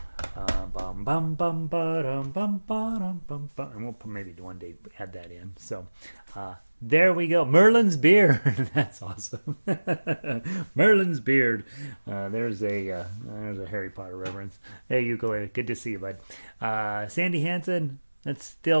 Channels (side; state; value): both; inverted; correlation -1.00